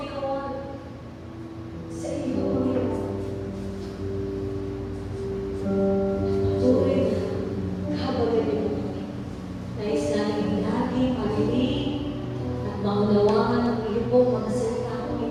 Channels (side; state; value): both; identical; correlation 1.00